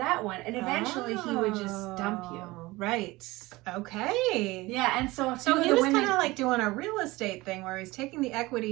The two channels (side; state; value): left; quieter; 20.6 dB